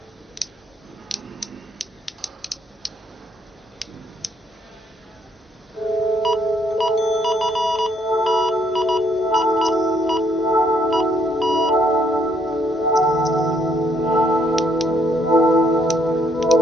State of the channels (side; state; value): both; normal; correlation 0.70